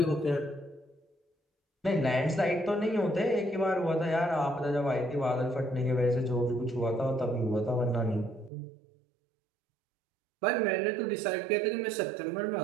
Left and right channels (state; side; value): drops out; left; at 8.5 s